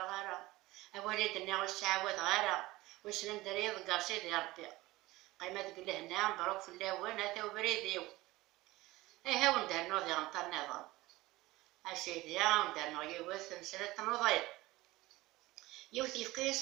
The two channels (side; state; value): left; quieter; 19.1 dB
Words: أولادنا والسعوات غارة وسلم دريض قاصيد يا ربي قيمة تقول هنا مبروك في اللاوان هذا وبريديو ها وندار نوضي غنطر نظام أسيدي وندار نوضي يوث مسألة نوضي يوث